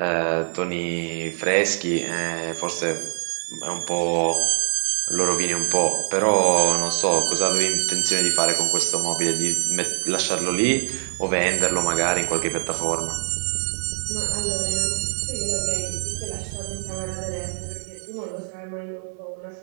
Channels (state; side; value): silent; left; digital silence